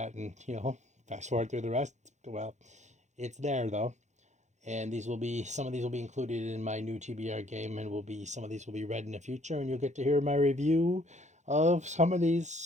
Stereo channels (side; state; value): left; late; 0.34 ms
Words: and, fast forward through the rest, well, it's there though. And some of these will be included in my new TBR game, and some of these will be read in the future, and you'll get to hear my review of some of